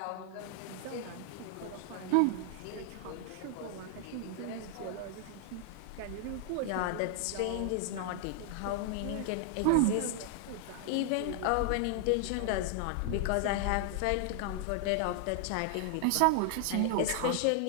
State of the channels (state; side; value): different; both; correlation 0.00